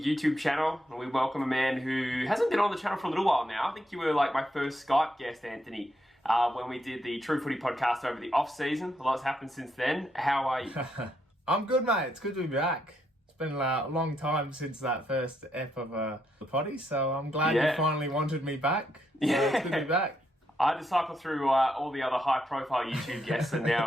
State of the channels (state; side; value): normal; both; correlation 0.78